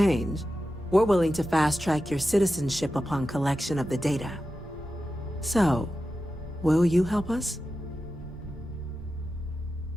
we're willing to fast-track your citizenship upon collection of the data. So, will you help us?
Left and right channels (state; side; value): normal; both; correlation 0.92